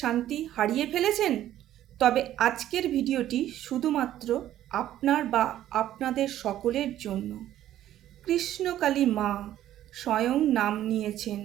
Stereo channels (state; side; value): quieter; left; 12.6 dB